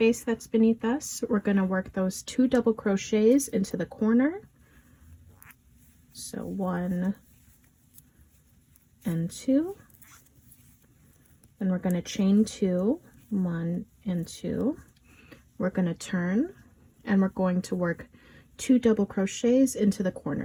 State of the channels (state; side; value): identical; both; correlation 1.00